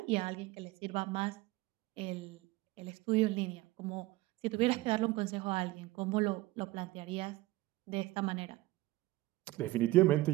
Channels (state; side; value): quieter; left; 19.0 dB